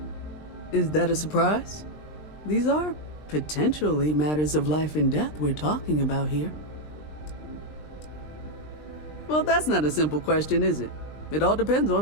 Is that a surprise? These are potentially matters of life and death we're talking about here. Well, that's not a simple question, is it? It all depends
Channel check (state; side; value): late; right; 20 ms